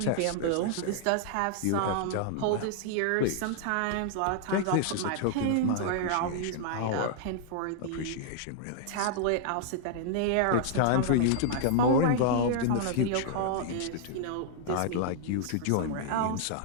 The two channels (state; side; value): different; both; correlation -0.01